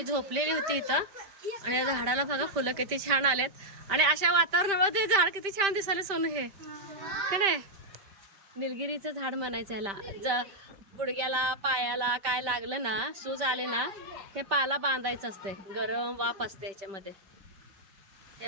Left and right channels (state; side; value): late; left; 5.1 ms